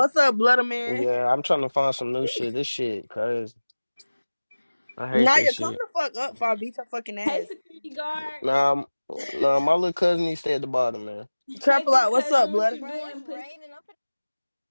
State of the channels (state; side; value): inverted; both; correlation -1.00